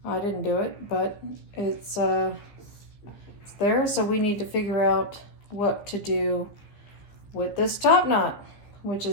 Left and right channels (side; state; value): right; late; 15 ms